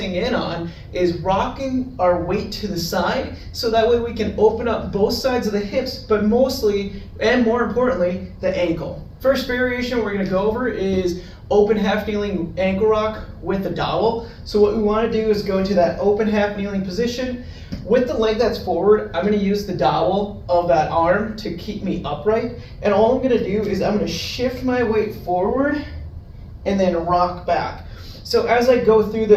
in on is rocking our weight to the side, so that way we can open up both sides of the hips, but mostly, and more importantly, the ankle. First variation we're going to go over is open half kneeling ankle rock with a dowel. So what we want to do is go into that open half kneeling position. With the leg that's forward, I'm going to use the dowel of that arm to keep me upright. And all I'm going to do is I'm going to shift my weight forward and then rock back. So as I go through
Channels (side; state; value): both; identical; correlation 1.00